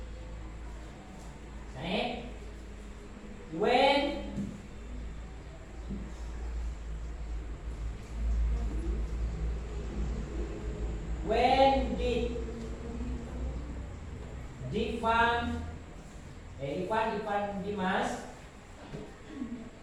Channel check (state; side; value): identical; both; correlation 1.00